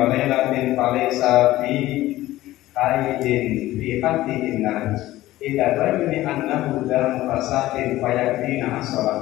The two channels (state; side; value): quieter; right; 16.1 dB